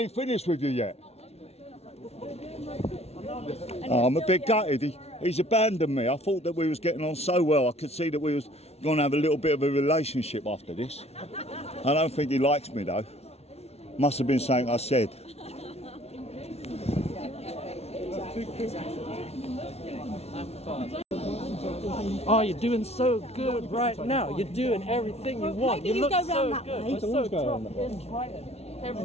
ain't finished with you yet. Oh, I'm a bit gutted. He's abandoned me. I thought that we was getting on so well. I could see that we was going to have a little bit of a relationship after this. I don't think he likes me though. Must have been something I said. Oh, you're doing so good right now. You're doing everything you want. maybe you look go so round that good. way. You're so tough in Brighton.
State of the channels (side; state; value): right; late; 0.31 ms